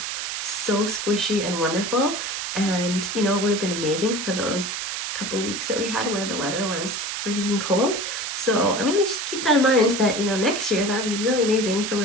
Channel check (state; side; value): noise; right; hiss, 4 dB below the sound